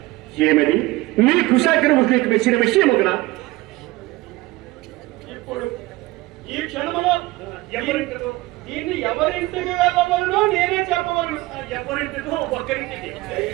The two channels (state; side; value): quieter; left; 19.9 dB